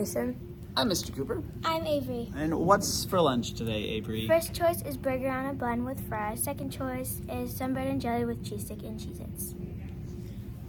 I'm Mr. Cooper. I'm Avery. And what's for lunch today, Avery? First choice is burger on a bun with fries. Second choice is sunbread and jelly with cheese stick and Cheez-Its.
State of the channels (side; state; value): both; identical; correlation 1.00